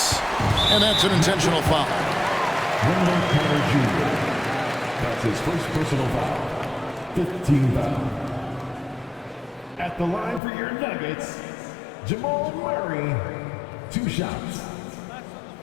and that's an intentional foul. Wendell Carter Jr. That's his first personal foul. 15 foul. At the line for your Nuggets, Jamal Murray. 2 shots.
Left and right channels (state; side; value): drops out; right; at 10.4 s